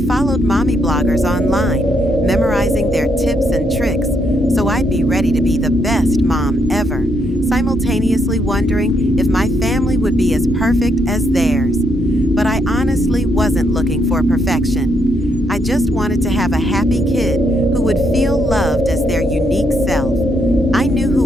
mommy bloggers online, memorizing their tips and tricks, so I'd be ready to be the best mom ever, simultaneously wondering if my family would be as perfect as theirs. But I honestly wasn't looking for perfection. I just wanted to have a happy kid who would feel loved as their unique self. I knew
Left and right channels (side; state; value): both; normal; correlation 0.76